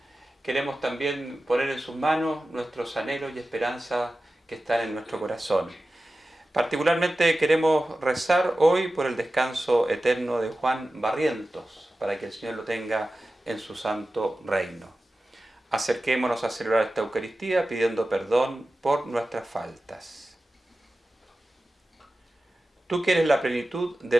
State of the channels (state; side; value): normal; both; correlation 0.95